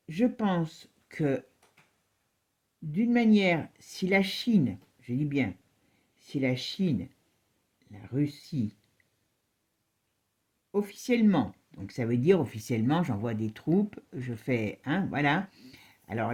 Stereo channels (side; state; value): both; identical; correlation 1.00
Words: je pense que d'une manière, si la Chine, je dis bien, si la Chine, la Russie, officiellement, donc ça veut dire officiellement, j'envoie des troupes, je fais, hein, voilà.